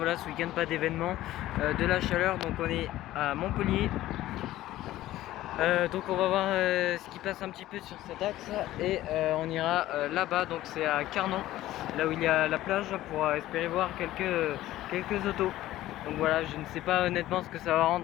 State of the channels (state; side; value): quieter; right; 15.0 dB